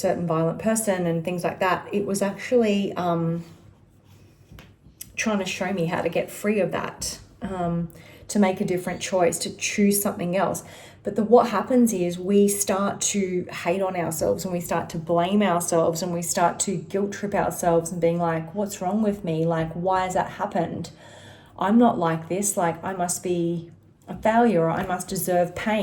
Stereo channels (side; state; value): both; identical; correlation 1.00